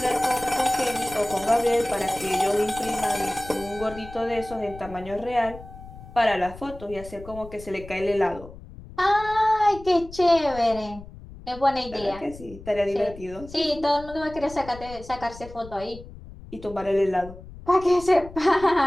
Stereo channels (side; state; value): left; noise; rumble, 16 dB below the sound